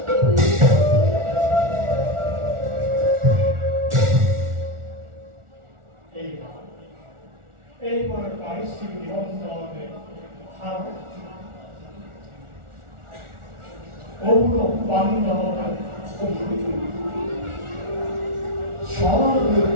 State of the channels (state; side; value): late; left; 1.4 ms